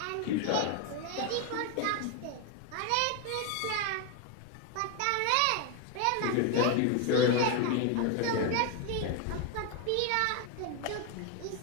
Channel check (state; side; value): different; both; correlation 0.01